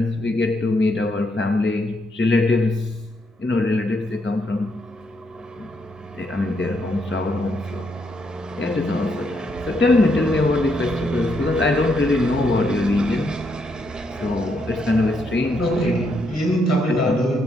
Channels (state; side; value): normal; both; correlation 0.77